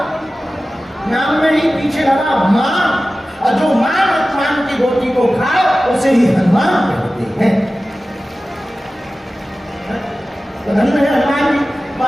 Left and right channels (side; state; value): both; normal; correlation 0.96